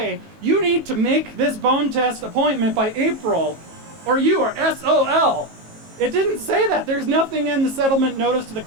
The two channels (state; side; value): late; left; 18 ms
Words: you need to make this bone test appointment by April, or you are SOL. It didn't say that. There's nothing in the settlement notice to the